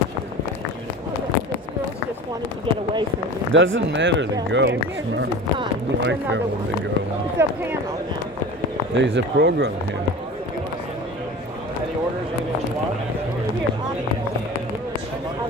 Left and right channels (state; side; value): normal; both; correlation 0.36